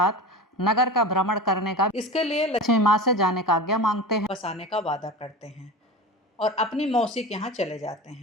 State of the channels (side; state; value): both; normal; correlation 0.30